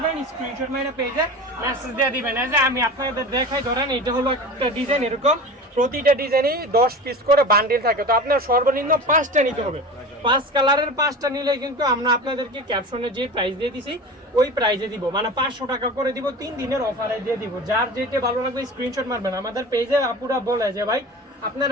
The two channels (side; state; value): both; normal; correlation 0.33